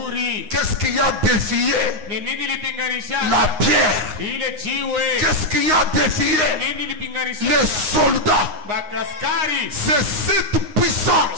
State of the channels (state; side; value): late; left; 9.7 ms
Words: Qu'est-ce qui a défié Ni nini ilipinganishaka? la pierre? Ile jiwe. Qu'est-ce qui a défié Nini ilipinganishaka? les soldats? Bakaskari. C'est cette